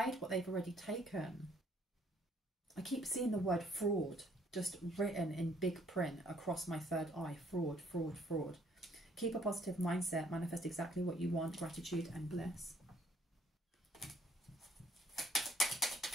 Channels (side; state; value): both; normal; correlation 0.64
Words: what they've already taken. I keep seeing the word fraud just written in big print across my third eye. Fraud, fraud, fraud. Keep a positive mindset. Manifest exactly what you want. Gratitude and bliss.